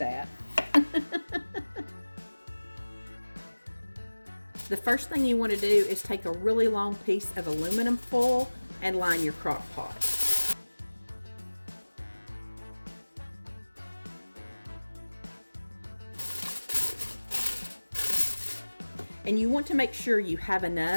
The first thing you want to do is take a really long piece of aluminum foil and line your crock pot. And you want to make sure you have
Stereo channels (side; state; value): both; inverted; correlation -1.00